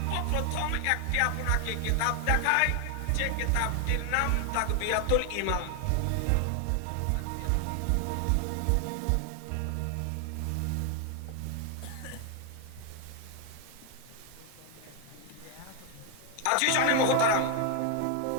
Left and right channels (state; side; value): different; both; correlation 0.00